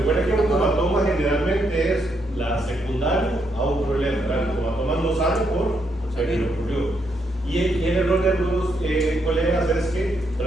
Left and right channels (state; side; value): normal; both; correlation 0.77